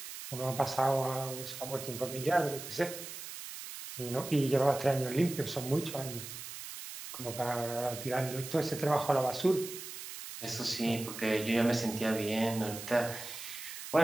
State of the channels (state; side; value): noise; right; hiss, 10 dB below the sound